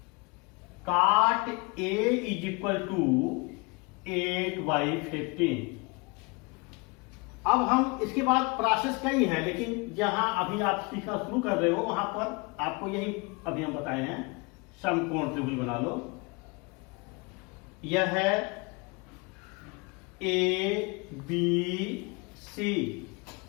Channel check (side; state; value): right; quieter; 28.7 dB